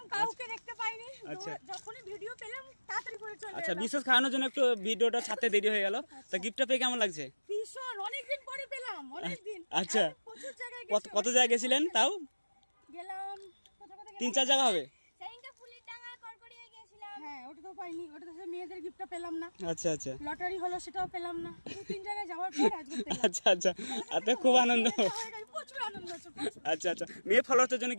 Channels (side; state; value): both; inverted; correlation -1.00